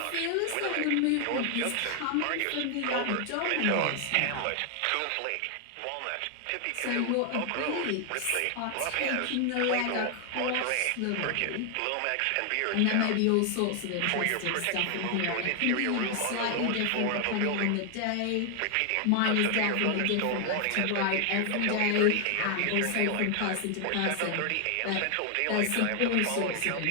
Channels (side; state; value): both; different; correlation 0.00